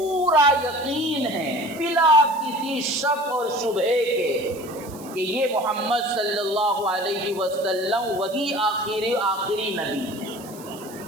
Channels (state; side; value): noise; right; hiss, 19 dB below the sound